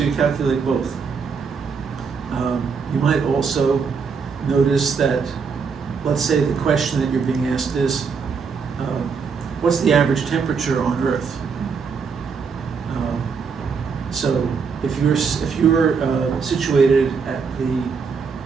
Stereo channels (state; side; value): quieter; left; 5.6 dB